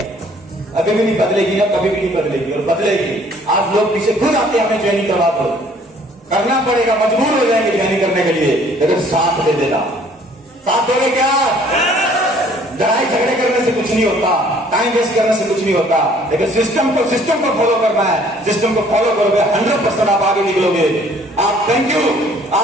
अभी भी नहीं बदलेगी ना, कभी भी नहीं बदलेगी और बदलेगी। आज लोग पीछे खुद आते हैं, हमें ज्वाइनिंग करवा दो, करना पड़ेगा, मजबूर हो जाएंगे ज्वाइनिंग करने के लिए। लेकिन साथ दे देना, साथ दोगे क्या? लड़ाई झगड़े करने से कुछ नहीं होता, टाइम वेस्ट करने से कुछ नहीं होता। लेकिन सिस्टम को फॉलो करना है। सिस्टम को फॉलो करोगे 100% आप आगे निकलोगे। आप थैंक यू,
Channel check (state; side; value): normal; both; correlation 0.58